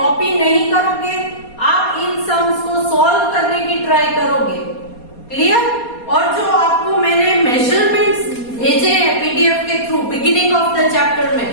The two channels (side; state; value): right; late; 4.2 ms